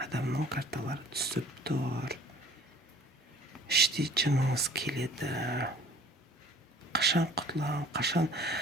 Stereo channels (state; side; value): normal; both; correlation 0.51